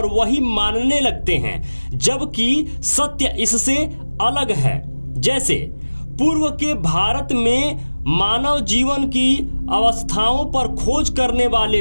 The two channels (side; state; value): both; inverted; correlation -1.00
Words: वही मानने लगते हैं, जबकि सत्य इससे अलग है। जैसे पूर्व के भारत में मानव जीवन की अवस्थाओं पर खोज करने वाले